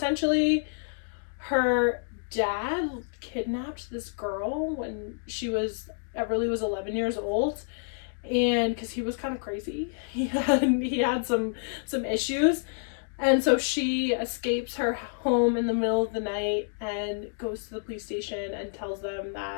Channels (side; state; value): right; silent; digital silence